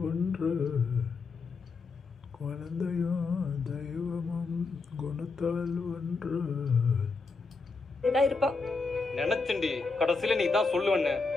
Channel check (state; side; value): quieter; right; 4.3 dB